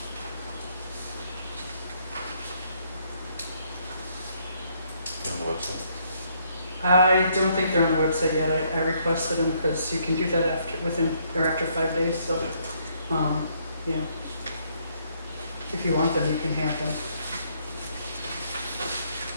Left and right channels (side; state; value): both; inverted; correlation -0.69